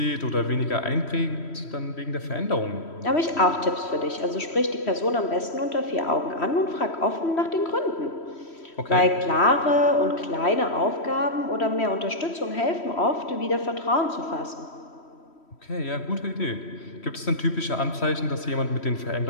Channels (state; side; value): late; right; 3.1 ms